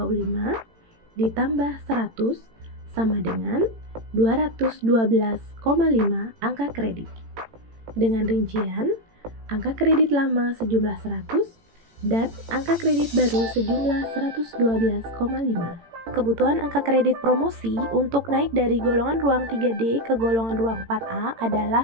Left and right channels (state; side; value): late; left; 18 ms